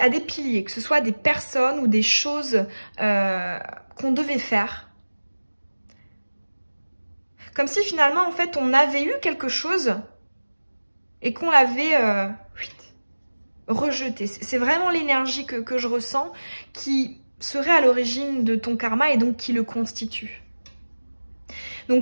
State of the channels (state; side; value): inverted; both; correlation -1.00